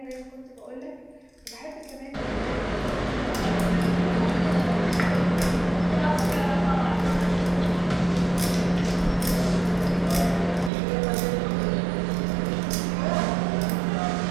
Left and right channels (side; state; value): left; drops out; at 10.7 s